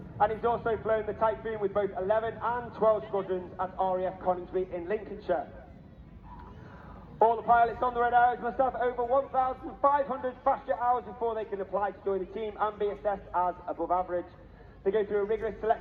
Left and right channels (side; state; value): both; identical; correlation 1.00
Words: and he's also flown the Typhoon with both 11 and 12 squadrons at RAF Coningsby in Lincolnshire. All the pilots on the Red Arrows must have over 1,500 fast jet hours before they can apply to join the team and be assessed as above average. They go through a rigorous